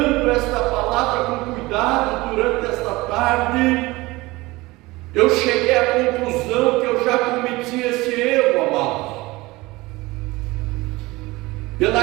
esta palavra com cuidado durante esta tarde, eu cheguei à conclusão que eu já cometi esse erro, amados.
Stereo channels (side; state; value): left; quieter; 21.1 dB